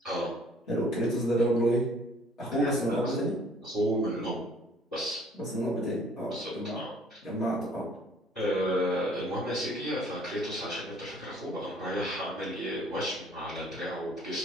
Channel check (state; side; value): normal; both; correlation 0.57